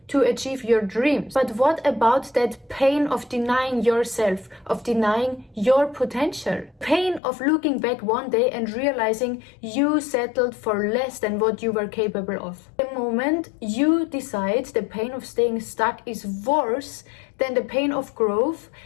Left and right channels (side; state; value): right; drops out; at 7.2 s